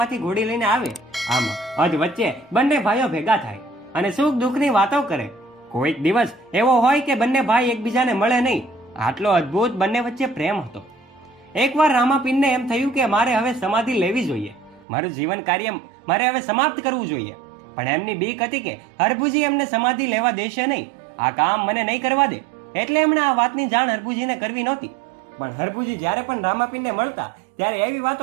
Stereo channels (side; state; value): left; drops out; at 14.9 s